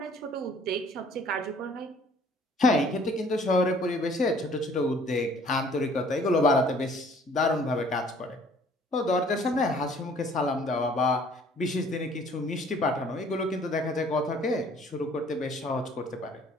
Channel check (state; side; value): normal; both; correlation 0.56